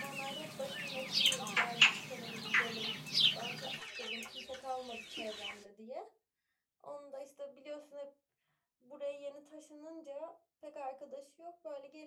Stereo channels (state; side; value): identical; both; correlation 1.00